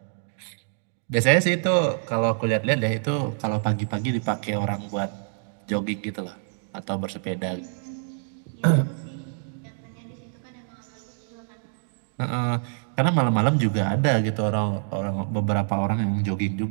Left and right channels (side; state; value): left; silent; digital silence